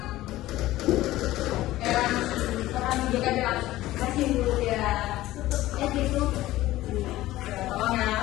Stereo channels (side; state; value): right; quieter; 16.1 dB